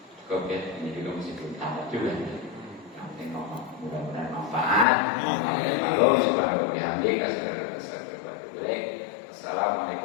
Cukup ya, ini juga masih belum tamat juga. Yang penting ngomong, mudah-mudahan manfaat. Kalau subhanahu wa bihamdika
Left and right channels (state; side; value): drops out; right; at 4.9 s